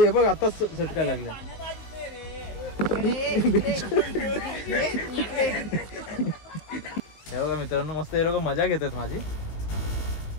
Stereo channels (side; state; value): right; late; 19 ms